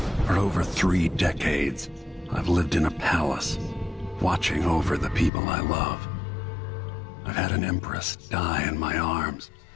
For over 3 decades, I've lived in a palace, watching over the people I love. I've had an empress die in my arms,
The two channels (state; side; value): drops out; right; at 5.3 s